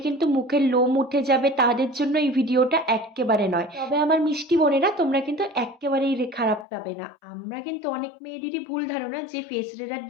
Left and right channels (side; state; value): right; drops out; at 6.7 s